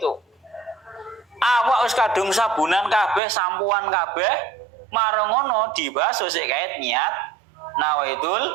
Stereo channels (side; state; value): left; drops out; at 3.2 s